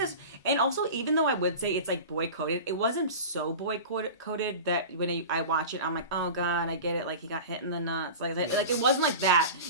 and also even though I would say it's like boy coded, it wasn't so boy coded that when I watch it, I'm like, oh god, I get it, like he got hit in the nuts, like it wasn't like that.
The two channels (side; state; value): both; inverted; correlation -0.32